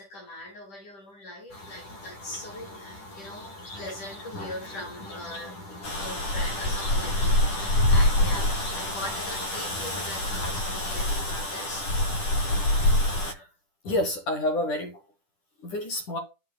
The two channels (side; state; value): right; late; 10 ms